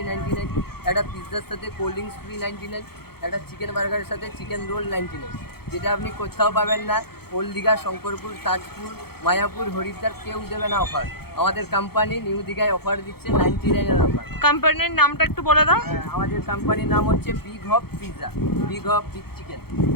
99, একটা পিৎজার সাথে কোল্ড ড্রিঙ্কস ফ্রি 99, একটা চিকেন বার্গারের সাথে চিকেন রোল 99, যেটা আপনি কোথাও পাবেন না। ওল্ড দীঘা, শঙ্করপুর, তাজপুর, মায়াপুর, হরিদ্বার কেউ দেবে না অফার। আমাদের কোম্পানি নিউ দীঘায় অফার দিচ্ছে 99-এর অফার। কোম্পানির নামটা একটু বলে দাও। আমাদের কোম্পানির নাম হচ্ছে big hop pizza, big hop big chicken.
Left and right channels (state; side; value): late; right; 0.96 ms